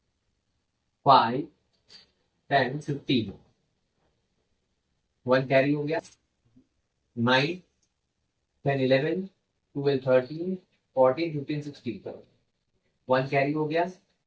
5 10 15, 1 कैरी हो गया, 9 10 11 12 13 14 15 16, 1 कैरी हो गया,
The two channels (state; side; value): identical; both; correlation 1.00